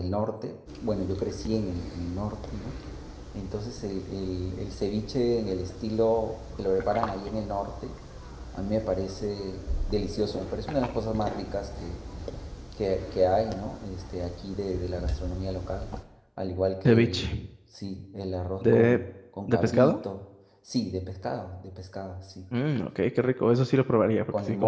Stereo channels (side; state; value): both; identical; correlation 1.00